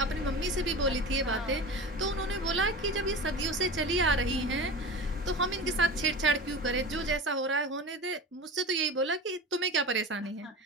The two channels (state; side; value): normal; both; correlation 0.31